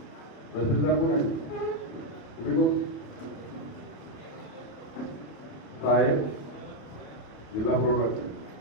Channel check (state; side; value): late; right; 28 ms